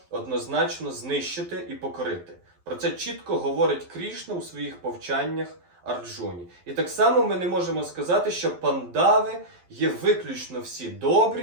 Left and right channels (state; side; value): late; left; 11 ms